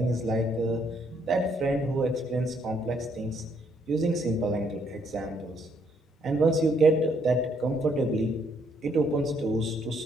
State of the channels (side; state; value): both; normal; correlation 0.70